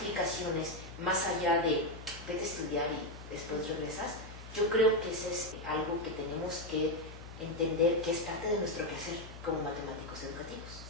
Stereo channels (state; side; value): noise; left; hum, 14 dB below the sound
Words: más allá de vete a estudiar y después regresas, yo creo que eso es algo que tenemos que entender que es parte de nuestro quehacer como matemáticos educativos.